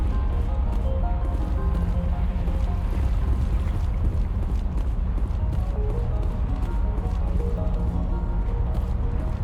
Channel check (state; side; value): identical; both; correlation 1.00